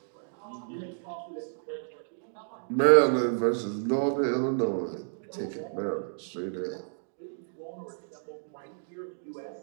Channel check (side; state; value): left; silent; digital silence